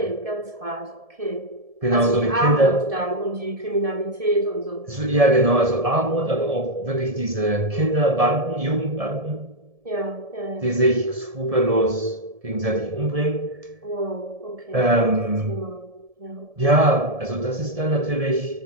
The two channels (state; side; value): late; left; 1.7 ms